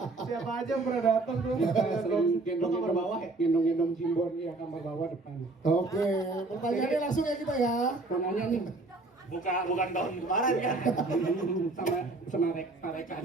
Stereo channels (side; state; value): left; quieter; 3.2 dB